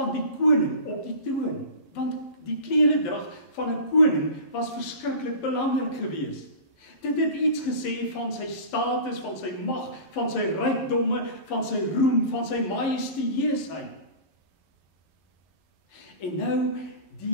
die koning op die troon. Want die kleredrag van 'n koning was verskriklik belangrik geweest. Dit het iets gesê van sy status, van sy mag, van sy rykdomme, van sy roem, van sy majestueusheid. En nou,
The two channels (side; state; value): right; late; 11 ms